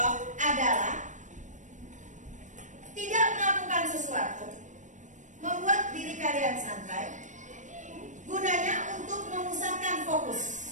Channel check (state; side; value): late; left; 0.36 ms